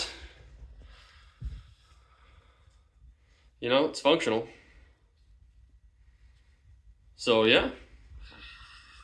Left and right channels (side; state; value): both; identical; correlation 1.00